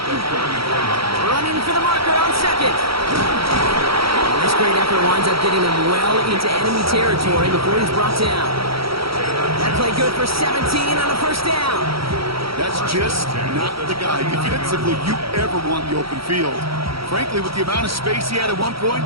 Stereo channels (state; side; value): late; left; 0.75 ms